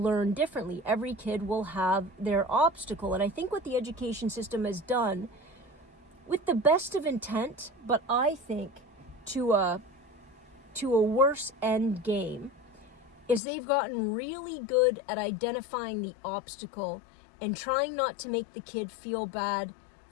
differently. Every kid will have their obstacle. And I think what the education system has done, with the best of intent, but I think to a worse end game, is they've gotten really good at identifying the obstacle and trying not to make the kid feel bad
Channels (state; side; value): drops out; right; at 13.4 s